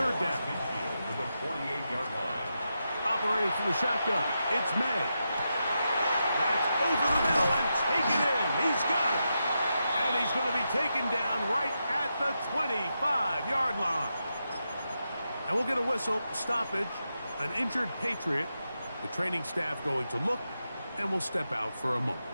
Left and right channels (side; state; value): both; inverted; correlation -0.87